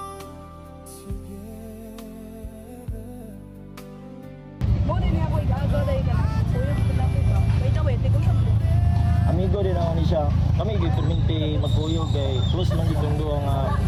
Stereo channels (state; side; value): identical; both; correlation 1.00